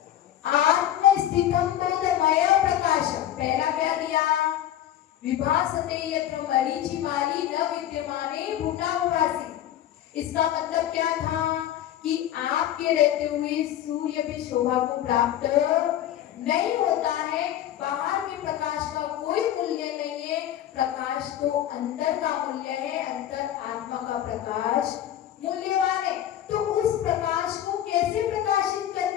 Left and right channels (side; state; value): right; quieter; 11.7 dB